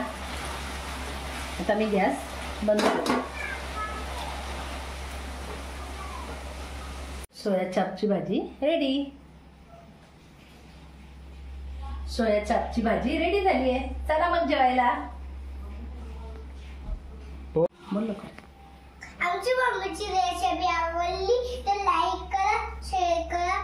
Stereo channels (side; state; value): both; identical; correlation 1.00